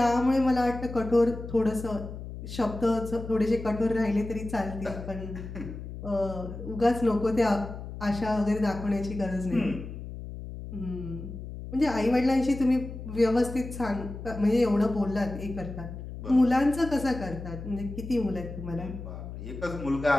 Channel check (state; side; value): noise; left; hum, 10 dB below the sound